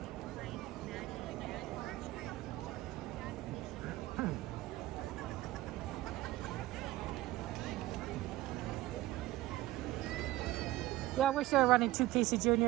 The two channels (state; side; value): quieter; left; 16.6 dB